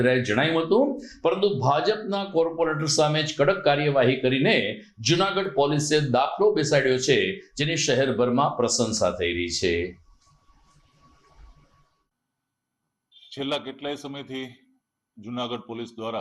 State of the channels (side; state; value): both; identical; correlation 1.00